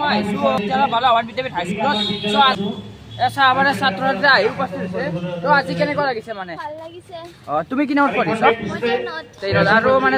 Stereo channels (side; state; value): both; identical; correlation 1.00